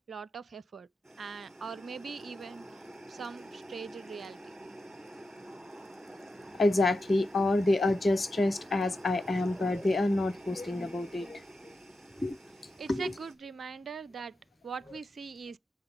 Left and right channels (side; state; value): both; normal; correlation 0.90